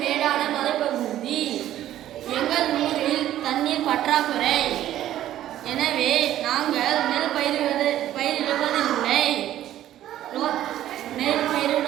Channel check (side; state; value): left; quieter; 12.7 dB